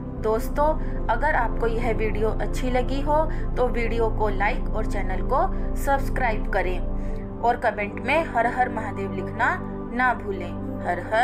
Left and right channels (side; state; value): both; identical; correlation 1.00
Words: दोस्तों, अगर आपको यह वीडियो अच्छी लगी हो तो वीडियो को लाइक और चैनल को सब्सक्राइब करें और कमेंट में हर हर महादेव लिखना ना भूलें। हर